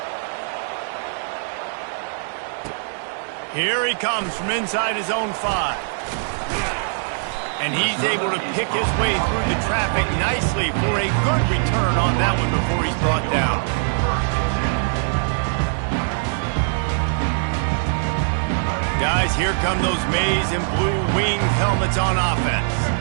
Here he comes from inside his own 5. And he's able to pick his way through the traffic nicely for a good return on that one before he's brought down. Guys, here come those maize and blue wing helmets on offense.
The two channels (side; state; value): left; silent; digital silence